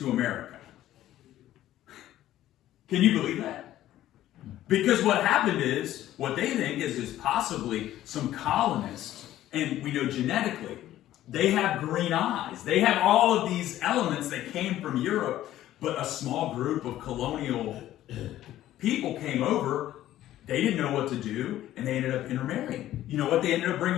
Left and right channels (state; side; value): quieter; right; 13.5 dB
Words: America. Can you believe that? Because what happened is, what they think is possibly some colonists, and we know genetically, they have green eyes. They have all of these elements that came from Europe, but a small group of colonial people came over. They didn't know what to do, and they ended up intermarrying. You know what they ended up